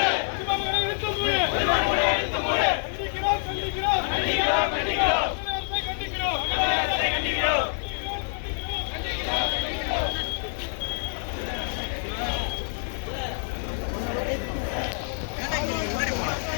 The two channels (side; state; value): right; silent; 60 dB below the other